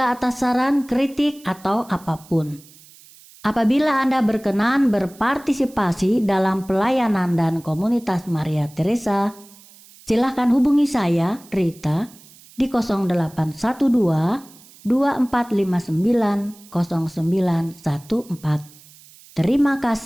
atas saran, kritik, atau apapun. Apabila Anda berkenan berpartisipasi dalam pelayanan dan komunitas Maria Teresa, silakan hubungi saya, Rita, di 0812 2459 0914. Terima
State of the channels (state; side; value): noise; right; hiss, 24 dB below the sound